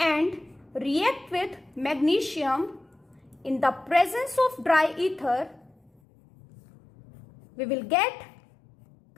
react with magnesium in the presence of dry ether, we will get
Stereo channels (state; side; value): drops out; right; at 5.9 s